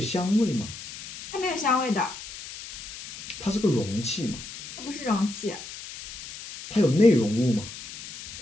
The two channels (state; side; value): noise; left; hiss, 13 dB below the sound